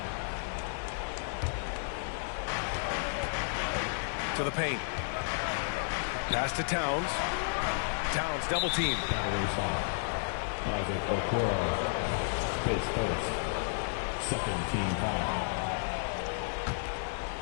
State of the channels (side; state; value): right; silent; digital silence